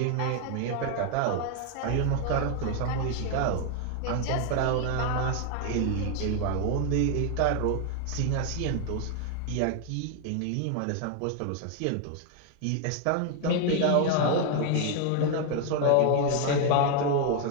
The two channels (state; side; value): different; both; correlation 0.00